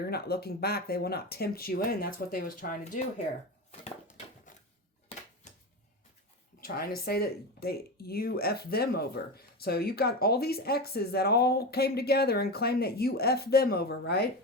not looking back. They will not tempt you in. That's what they was trying to do here. Trying to say that you F them over. So you got all these exes that all came together and claimed that you F them over,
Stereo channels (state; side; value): normal; both; correlation 0.22